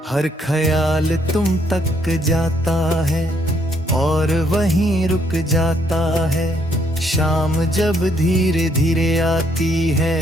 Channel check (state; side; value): normal; both; correlation 0.70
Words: हर ख्याल तुम तक जाता है और वहीं रुक जाता है। शाम जब धीरे धीरे आती है,